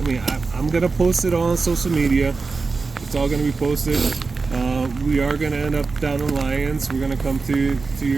I'm going to post it all on social media. It's all going to be posted. We are going to end up down in Lyons. We're going to come to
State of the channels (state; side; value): quieter; left; 4.2 dB